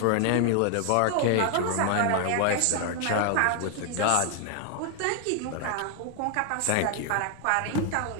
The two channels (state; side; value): different; both; correlation 0.00